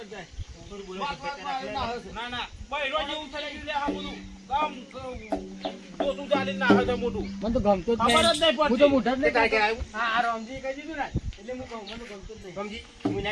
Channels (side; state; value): both; identical; correlation 1.00